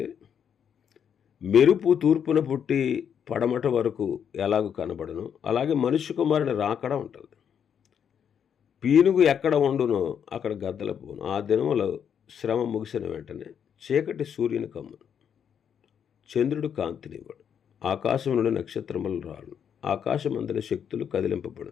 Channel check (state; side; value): quieter; right; 8.1 dB